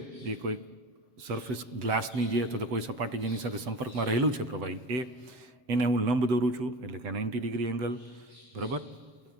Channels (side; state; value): left; late; 7.9 ms